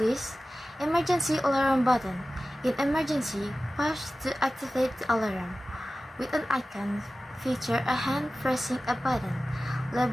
emergency alarm button. In emergency, push to activate the alarm. With an icon, feature a hand pressing a button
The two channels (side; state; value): both; normal; correlation 0.96